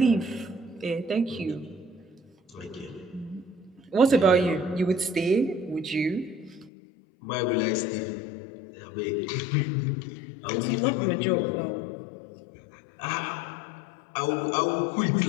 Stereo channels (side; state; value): right; drops out; at 6.7 s